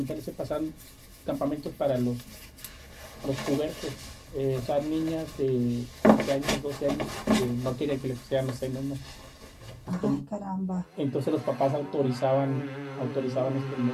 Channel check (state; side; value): identical; both; correlation 1.00